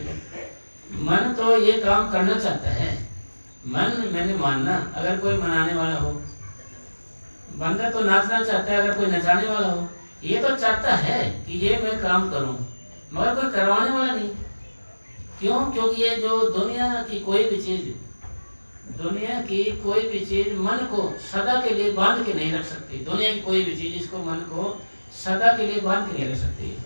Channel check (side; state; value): both; inverted; correlation -1.00